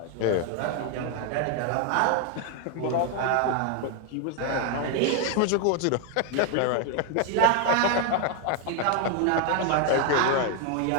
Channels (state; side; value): different; both; correlation 0.01